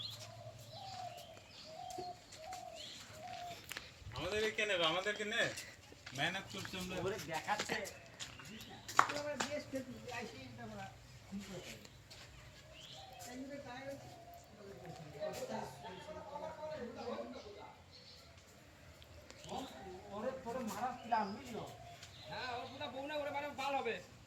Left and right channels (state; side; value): identical; both; correlation 1.00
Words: আমাদেরকে নেবে আমাদেরকে নে মেহনত করছি আমরা ওরে দেখাচ্ছে আমরা বেশ খেতে আইছি আমরা খুব করে এমনি কাজ ওরে তোরে মারা প্ল্যান বুঝছো হ্যাঁ ওর পুরো বউনা করে মানে ভালো হবে